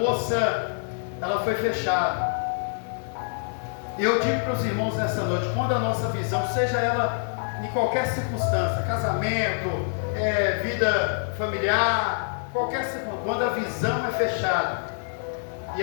ela foi fechada. E eu digo para os irmãos nessa noite, quando a nossa visão, seja ela em qualquer circunstância, casamento, vida familiar, qualquer circunstância, quando a visão é fechada, e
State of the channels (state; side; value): silent; right; digital silence